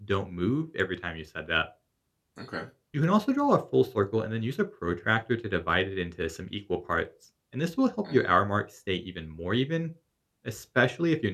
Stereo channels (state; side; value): identical; both; correlation 1.00